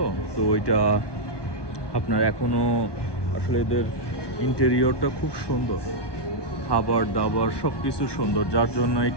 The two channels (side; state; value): right; late; 1.2 ms